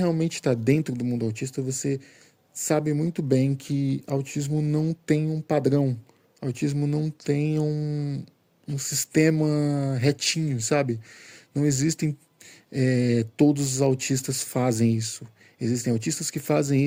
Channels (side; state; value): both; identical; correlation 1.00